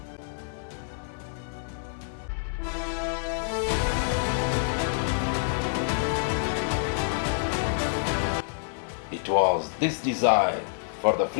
It was this desire for the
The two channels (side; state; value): right; silent; digital silence